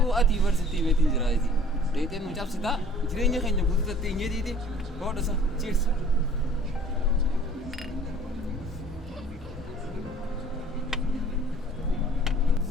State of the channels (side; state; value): both; normal; correlation 0.51